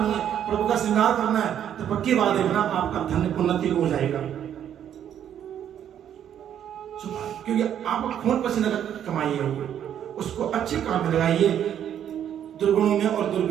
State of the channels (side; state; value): left; quieter; 9.8 dB